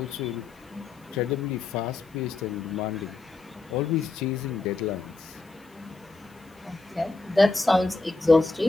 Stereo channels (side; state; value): right; quieter; 3.5 dB